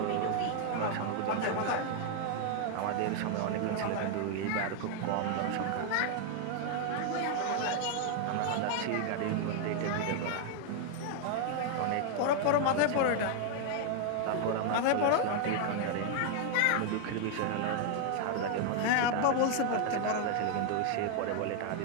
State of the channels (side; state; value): both; different; correlation 0.00